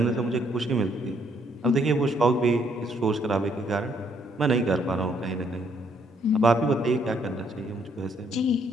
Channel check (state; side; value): normal; both; correlation 0.69